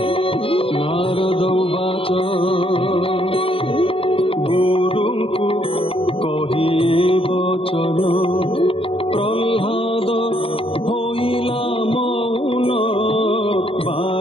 ନାରଦ ବାଚ ଗୁରୁଙ୍କୁ କହି ବଚନ ପ୍ରହ୍ଲାଦ ହୋଇଲା ମୌନ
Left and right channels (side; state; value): right; late; 0.27 ms